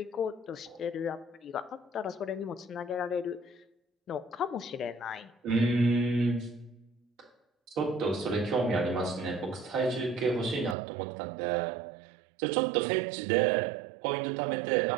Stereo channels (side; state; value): left; drops out; at 10.8 s